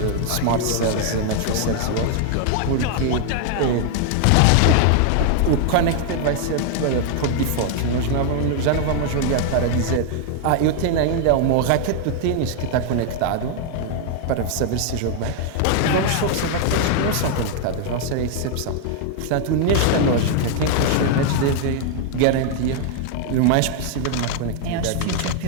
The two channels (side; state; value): both; different; correlation 0.00